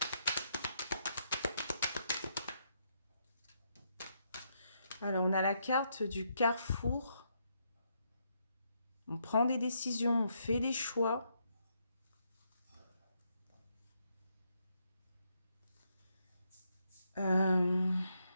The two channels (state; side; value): inverted; both; correlation -0.77